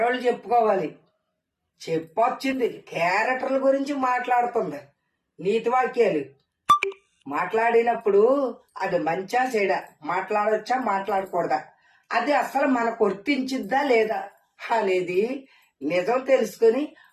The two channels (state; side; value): identical; both; correlation 1.00